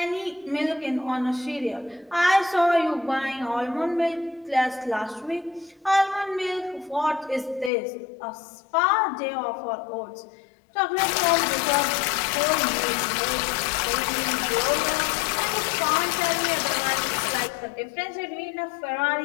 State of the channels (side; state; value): right; drops out; at 7.7 s